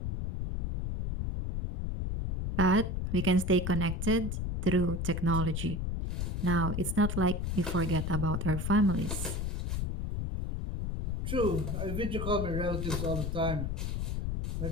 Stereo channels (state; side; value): noise; left; rumble, 2 dB below the sound